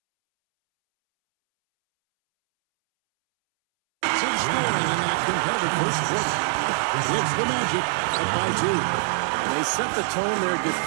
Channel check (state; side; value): silent; left; 63 dB below the other